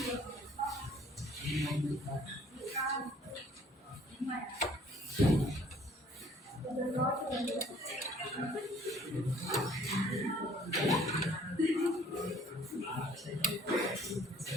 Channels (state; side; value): normal; both; correlation 0.57